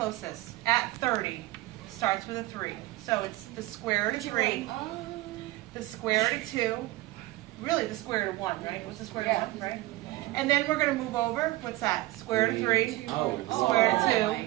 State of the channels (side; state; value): left; quieter; 18.2 dB